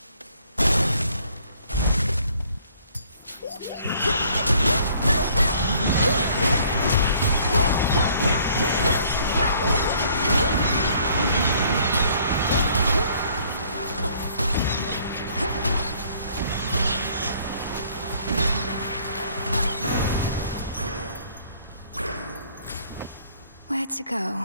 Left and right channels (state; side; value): inverted; both; correlation -0.60